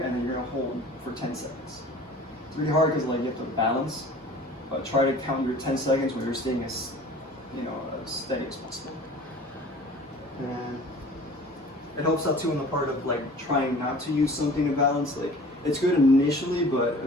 and then you're gonna hold for 10 seconds. It's really hard because like you have to balance, but try to count your 10 seconds when you're staying as, as steady as possible. And it helps out too in the part of like trying not to use something to balance. Like it's good initially, but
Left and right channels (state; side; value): normal; both; correlation 0.45